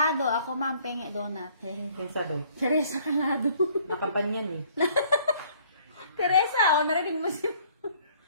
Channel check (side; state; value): both; inverted; correlation -0.58